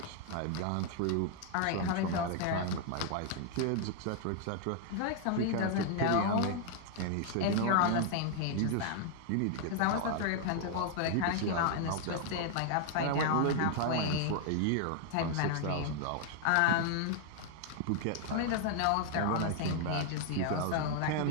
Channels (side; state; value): both; different; correlation 0.00